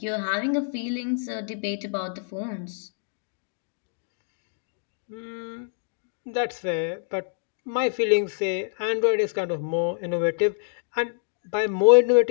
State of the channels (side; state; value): right; silent; digital silence